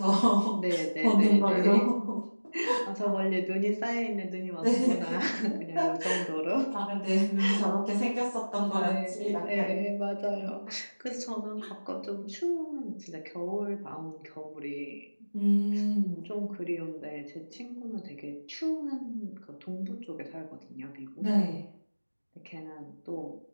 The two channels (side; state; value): both; inverted; correlation -1.00